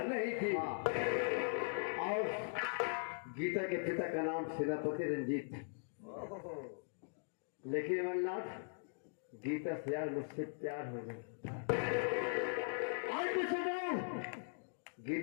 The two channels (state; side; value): silent; right; digital silence